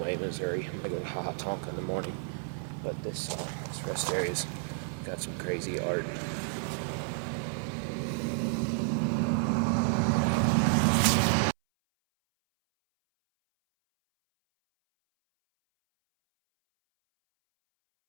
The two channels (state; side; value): silent; left; 57 dB below the other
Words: Missouri. I'm gonna go to Tonka in the morning, but this rest area's got some crazy art.